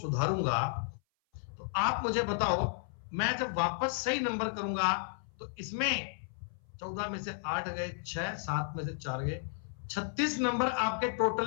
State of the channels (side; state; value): right; silent; 55 dB below the other